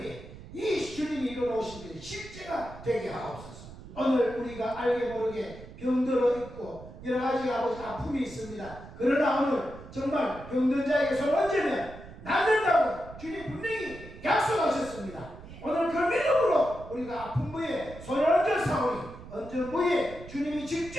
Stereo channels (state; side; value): noise; right; rumble, 15 dB below the sound